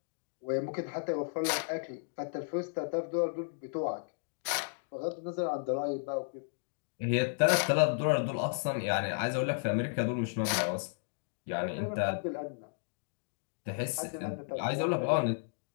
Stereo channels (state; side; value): silent; right; digital silence